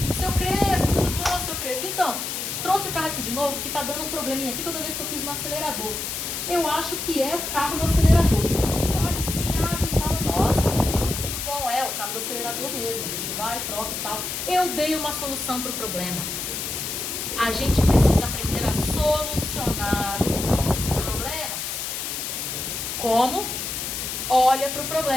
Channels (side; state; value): left; noise; hiss, 4 dB below the sound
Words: Seu Crespo, tudo bom, seu Crespo? Então, trouxe o carro aqui de novo, que tá dando um probleminha aqui toda vez que eu piso no acelerador. Eu acho que é o cabo do acelerador. Olha assim, abre e fala, nossa, tudo bom, é o cabo do acelerador mesmo. A gente vai, troca e tal. Eu dei uma solução para o problema. A gente precisa aprender a solucionar os nossos problemas. Como? Olha para o